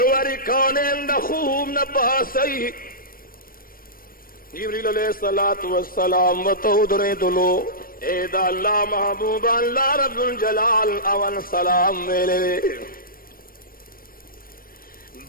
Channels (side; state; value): right; late; 0.42 ms